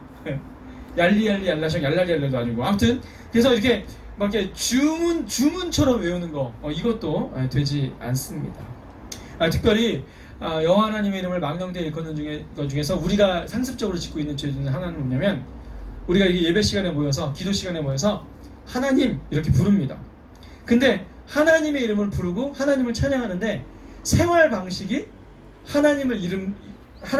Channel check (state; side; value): identical; both; correlation 1.00